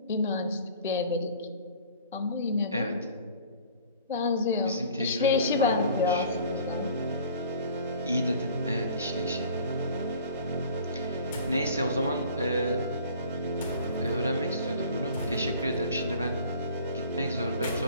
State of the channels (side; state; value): both; inverted; correlation -0.48